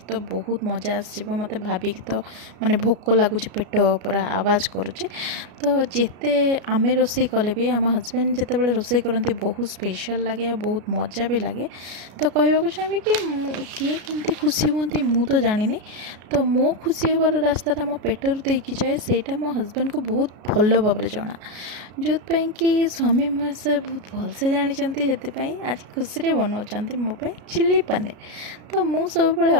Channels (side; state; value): left; late; 33 ms